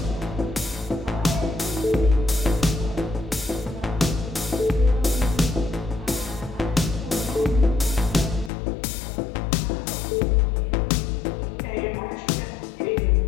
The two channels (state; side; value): drops out; right; at 8.5 s